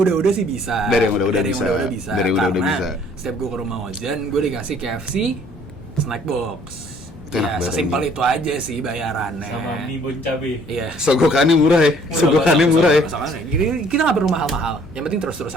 sih bisa. Dari yang udah-udah bisa. Karena setiap gue ke rumah Ojan, gue dikasih KFC, snack box. Ya sesimpel itu aja sih bayarannya. Sama mie bon cabe. Iya. Sogokannya murah ya. Kita nggak perlu mahal-mahal. Yang penting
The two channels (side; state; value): both; normal; correlation 0.58